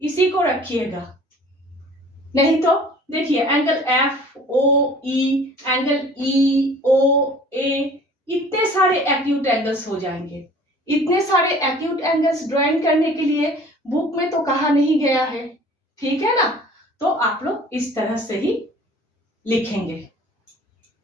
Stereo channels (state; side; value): normal; both; correlation 0.49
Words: इसी को रखिएगा। नहीं तो देखिए एंगल FOE, एंगल EOA, इतने सारे एक्यूट एंगल्स हो जाएंगे। इतने सारे एक्यूट एंगल्स ड्राइंग करने के लिए बुक में तो कहा नहीं गया है, ठीक है ना। तो आप लोग इस तरह से ही लिखेंगे,